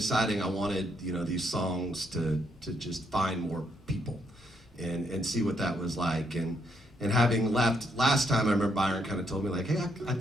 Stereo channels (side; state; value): both; normal; correlation 0.75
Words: I wanted these songs to just find more people and see what that was like. And having left last time, I remember Byron kind of told me, like, hey, I